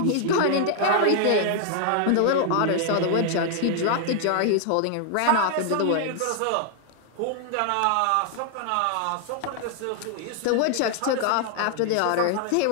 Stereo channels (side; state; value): both; different; correlation 0.00